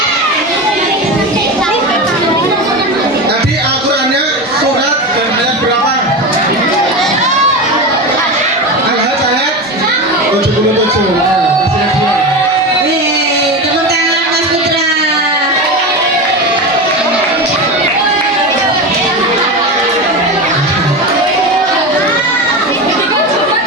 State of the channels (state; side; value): normal; both; correlation 0.22